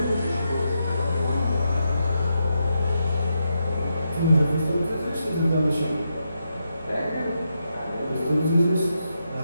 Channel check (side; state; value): both; inverted; correlation -0.84